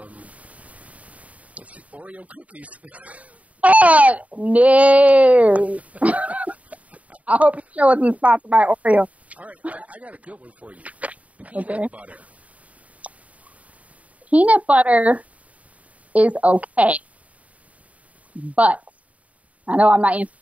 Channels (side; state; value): left; late; 0.068 ms